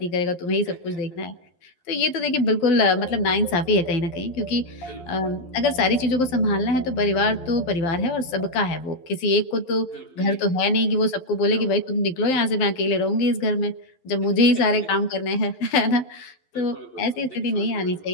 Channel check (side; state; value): right; late; 11 ms